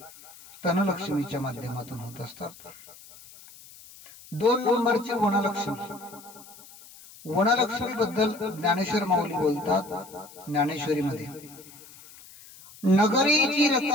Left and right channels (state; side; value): noise; left; hiss, 20 dB below the sound